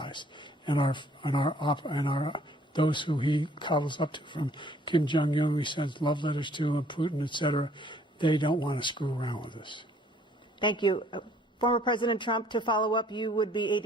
and those who he coddles up to, from Kim Jong-un, who he sends love letters to, and Putin, etc. They don't want to screw around with us. Thank you. Former President Trump, to follow up, you would be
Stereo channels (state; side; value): normal; both; correlation 0.60